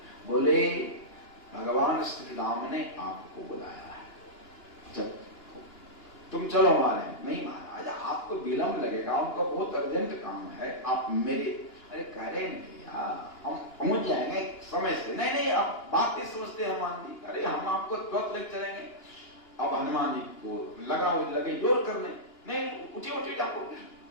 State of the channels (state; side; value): late; right; 2.9 ms